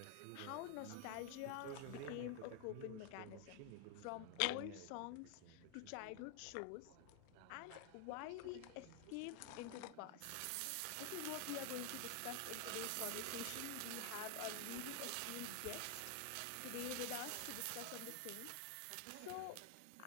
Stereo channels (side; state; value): both; different; correlation 0.00